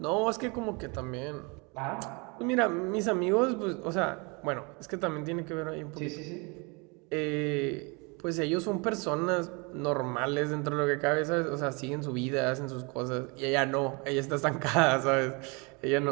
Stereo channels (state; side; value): quieter; left; 30.1 dB